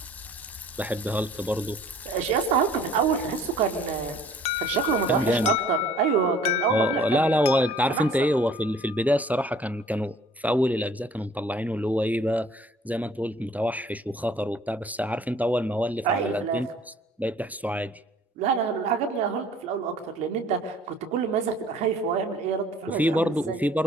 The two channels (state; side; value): normal; both; correlation 0.54